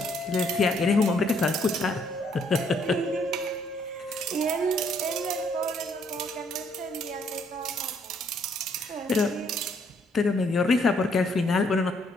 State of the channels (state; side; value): normal; both; correlation 0.68